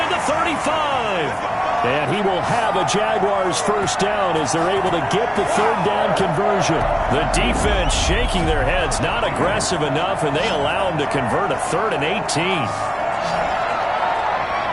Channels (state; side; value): identical; both; correlation 1.00